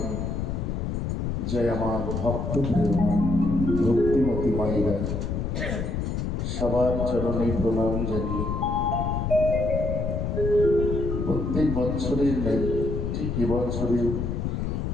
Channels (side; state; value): left; noise; rumble, 2 dB below the sound